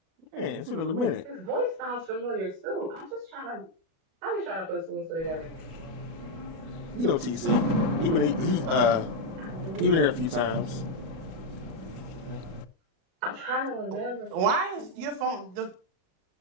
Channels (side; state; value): left; late; 37 ms